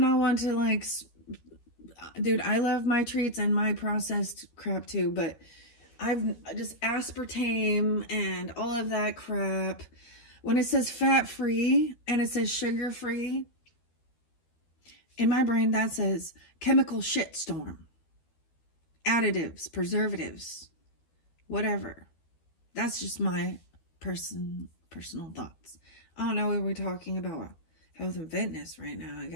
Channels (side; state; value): right; late; 12 ms